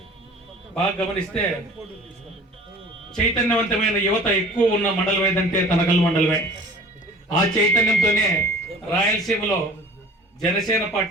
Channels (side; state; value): both; normal; correlation 0.46